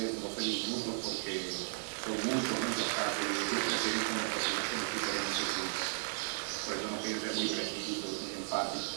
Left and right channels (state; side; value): silent; left; 54 dB below the other